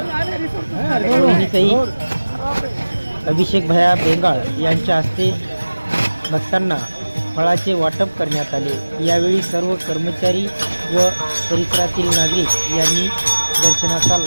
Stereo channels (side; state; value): both; inverted; correlation -1.00